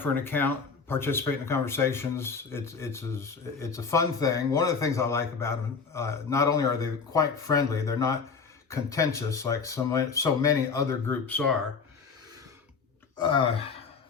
an account, participate in the conversations. It's a fun thing. One of the things I like about them, not only are they quite friendly, they're not contentious like so many other groups are.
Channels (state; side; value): quieter; right; 5.3 dB